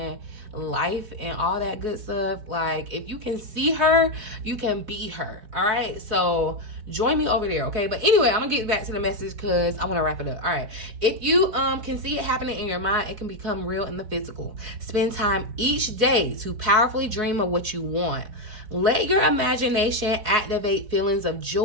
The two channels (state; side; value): late; left; 4.7 ms